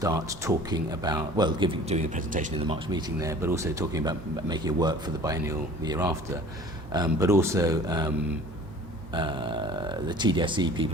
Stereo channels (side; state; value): both; normal; correlation 0.47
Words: talking about, well, doing a presentation in the March meeting there, but also talking about making it work for the biennial the year after. But also the TDSE